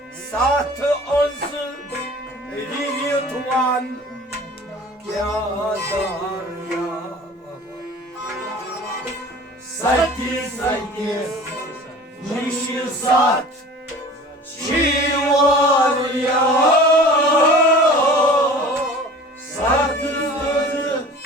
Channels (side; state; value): both; normal; correlation 0.43